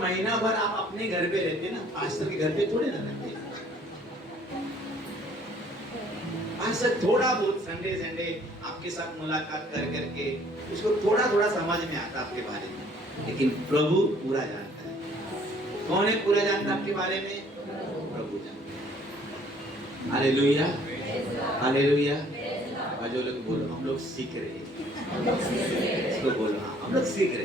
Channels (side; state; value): both; normal; correlation 0.58